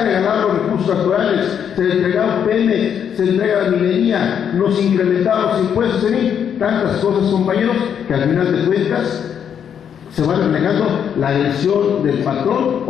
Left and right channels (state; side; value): quieter; right; 8.3 dB